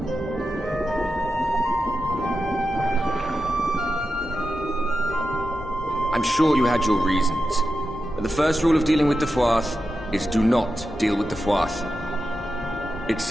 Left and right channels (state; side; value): normal; both; correlation 0.90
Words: I'm sure you had your reasons, but the first rule of dealing with the Froth is do not deal with the Froth. It's